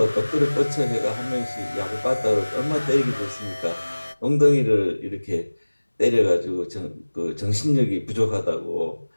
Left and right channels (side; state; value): both; inverted; correlation -1.00